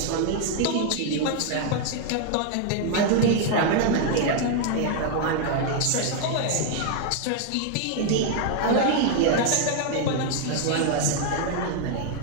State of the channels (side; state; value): both; different; correlation 0.00